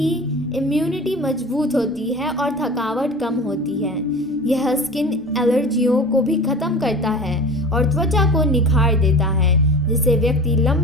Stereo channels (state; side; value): normal; both; correlation 0.36